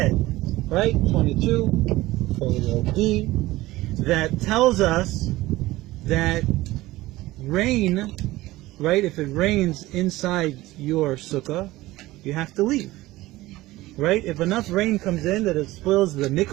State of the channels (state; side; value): quieter; left; 18.0 dB